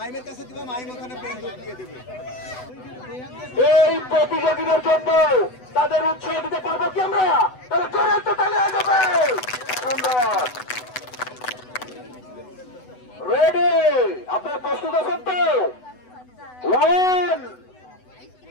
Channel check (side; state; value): right; late; 8.0 ms